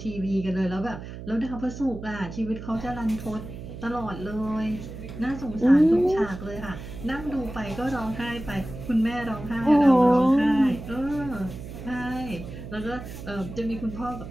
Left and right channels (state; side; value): noise; right; hum, 11 dB below the sound